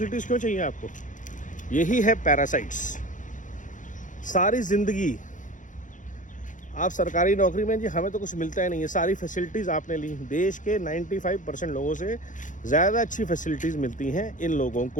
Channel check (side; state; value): right; late; 0.37 ms